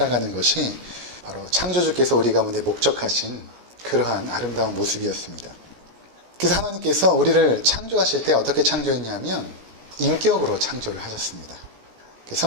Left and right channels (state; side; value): late; left; 17 ms